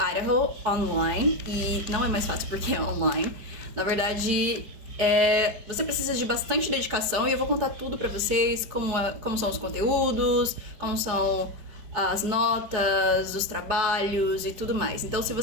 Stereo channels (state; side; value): late; left; 5.1 ms